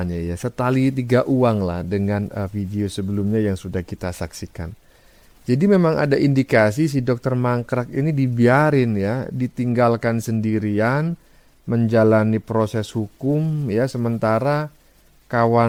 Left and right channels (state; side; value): identical; both; correlation 1.00